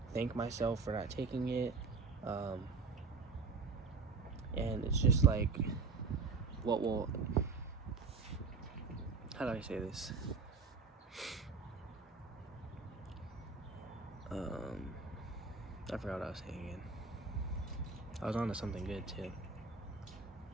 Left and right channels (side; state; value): left; quieter; 4.5 dB